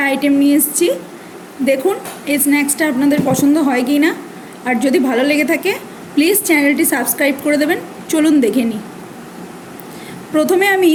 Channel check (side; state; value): both; identical; correlation 1.00